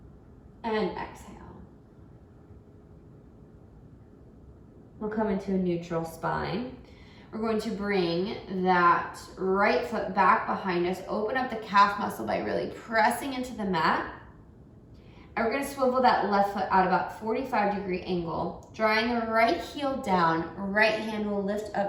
And exhale. We'll come into a neutral spine. We're going to bring that right foot back behind us. Open up the calf muscle by really pressing into the mat. And we're going to swivel that left foot out about 45-degree angle. Drawing the right heel down, right hand will lift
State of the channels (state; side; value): identical; both; correlation 1.00